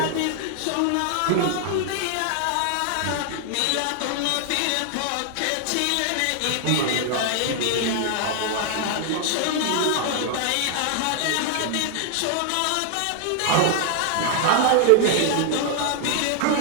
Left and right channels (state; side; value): different; both; correlation 0.00